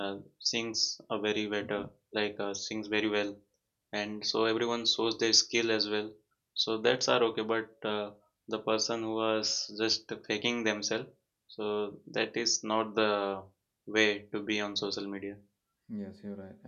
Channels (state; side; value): identical; both; correlation 1.00